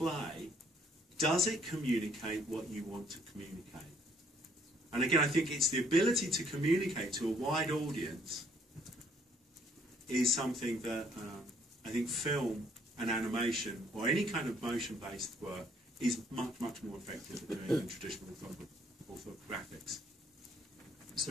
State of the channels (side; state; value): both; normal; correlation 0.64